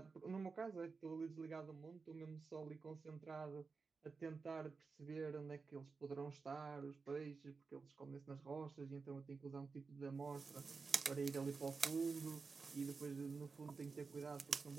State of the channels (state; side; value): quieter; left; 4.6 dB